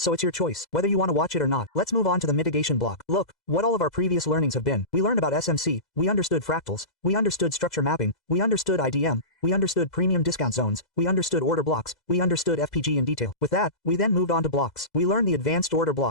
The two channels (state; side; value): late; right; 2.0 ms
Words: it's your choice, whether you want to watch it or not. Let's move on to the mitigation block. Look, what all of our previous learnings have been. We learned about SMC, we understood fractals, we understood structure mapping, we understood IDM, we understood premium discount zones, we understood order blocks, we understood FPG in detail. With that, we then moved on to blocks. We learned the advanced order